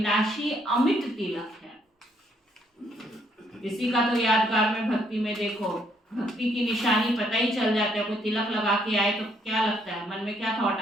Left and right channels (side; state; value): both; normal; correlation 0.70